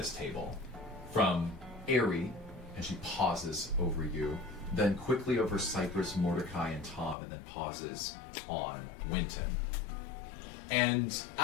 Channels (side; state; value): right; drops out; at 7.2 s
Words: table. From Eri, and she pauses over you, then quickly over Cypress, Mordecai, and Tom, and then pauses on Winton. And